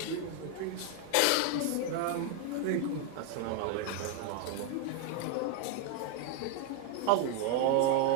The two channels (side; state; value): both; different; correlation 0.00